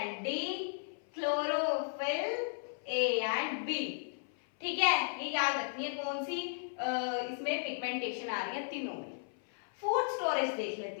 D, chlorophyll A and B. ठीक है, ये याद रखनी है कौन सी इसमें पिगमेंटेशन आ रही है, तीनों में। फूड स्टोरेज देख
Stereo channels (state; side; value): silent; right; 54 dB below the other